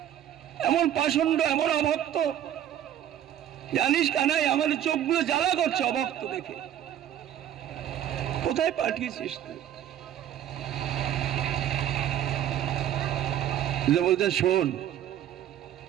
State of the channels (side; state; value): left; quieter; 11.0 dB